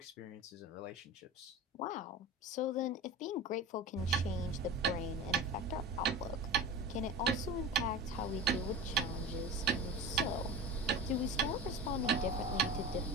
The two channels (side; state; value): both; normal; correlation 0.31